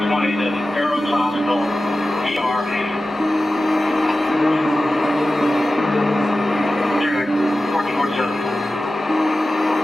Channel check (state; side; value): normal; both; correlation 0.94